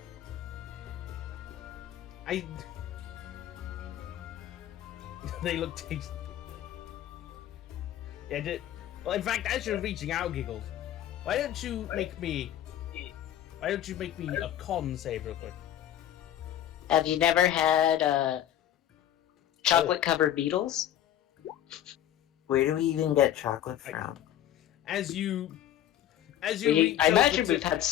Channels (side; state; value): right; quieter; 11.7 dB